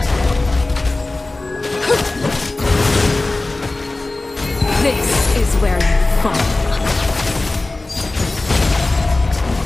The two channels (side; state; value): right; quieter; 3.1 dB